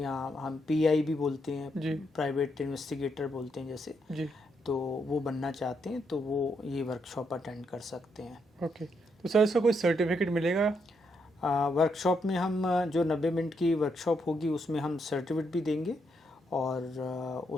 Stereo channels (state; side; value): normal; both; correlation 0.78